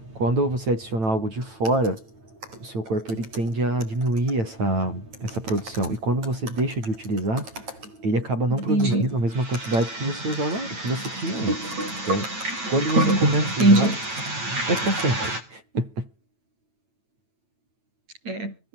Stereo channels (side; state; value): left; late; 9.0 ms